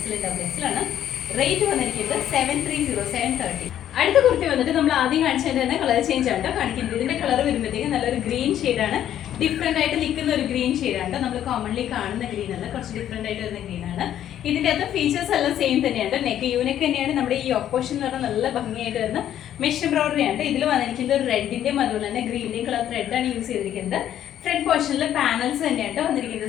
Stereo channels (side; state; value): right; quieter; 11.0 dB